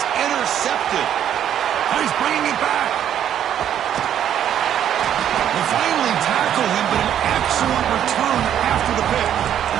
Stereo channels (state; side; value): quieter; left; 10.1 dB